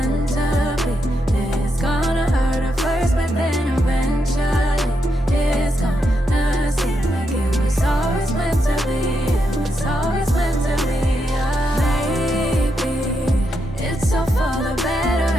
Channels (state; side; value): normal; both; correlation 0.82